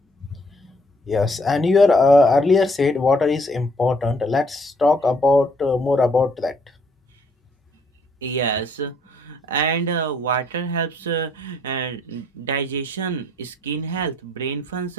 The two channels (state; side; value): normal; both; correlation 0.65